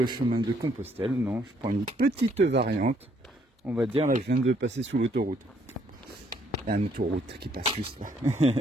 chemin de Compostelle. Non, je prends une petite variante. On va dire, là, je viens de passer sous l'autoroute. Il y a une autoroute qui passe juste là.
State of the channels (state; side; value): normal; both; correlation 0.68